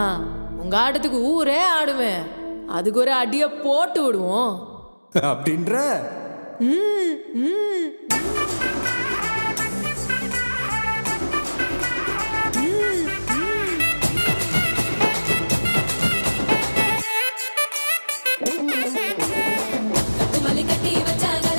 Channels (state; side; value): inverted; both; correlation -1.00